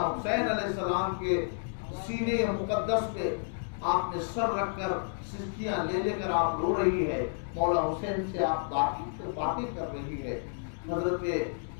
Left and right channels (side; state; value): right; silent; digital silence